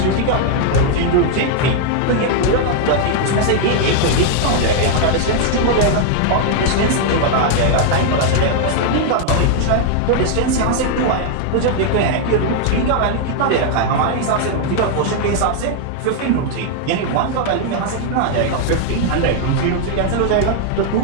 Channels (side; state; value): both; different; correlation 0.00